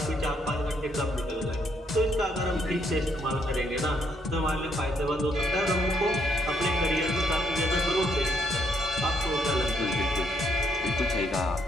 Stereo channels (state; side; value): normal; both; correlation 0.72